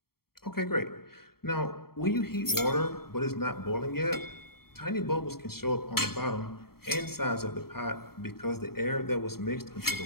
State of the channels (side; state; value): right; late; 0.94 ms